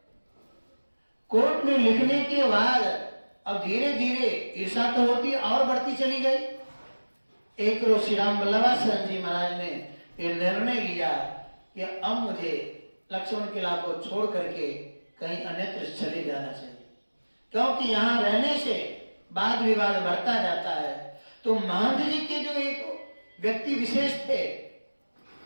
कोर्ट में लिखने के बाद अब धीरे धीरे ईर्षा तो होती और बढ़ती चली गई। एक रोज श्री राम वल्लभासन जी महाराज ने ये निर्णय लिया कि अब मुझे लक्ष्मण किला को छोड़ करके कहीं अन्यत्र चले जाना चाहिए, क्योंकि यहाँ रहने से वाद विवाद बढ़ता जाता है। तो महंत जी के जो एक व्यक्ति विशेष थे,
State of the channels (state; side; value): inverted; both; correlation -1.00